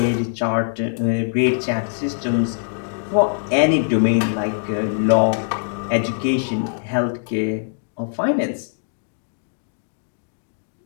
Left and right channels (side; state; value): right; silent; digital silence